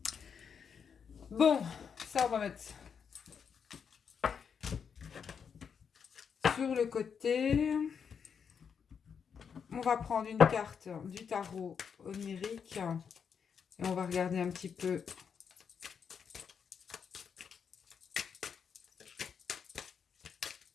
Bon, ça, on va mettre sur le côté. On va prendre une carte du tarot onirique et on va regarder un petit peu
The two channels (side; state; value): right; quieter; 6.8 dB